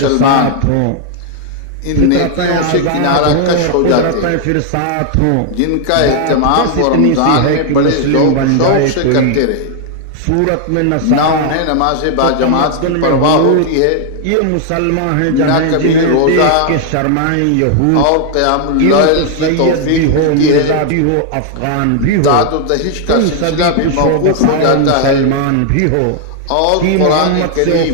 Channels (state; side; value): different; both; correlation 0.00